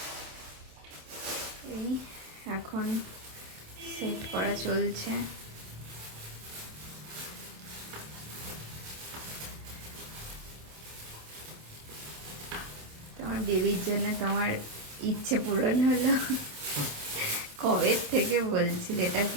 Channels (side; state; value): left; late; 27 ms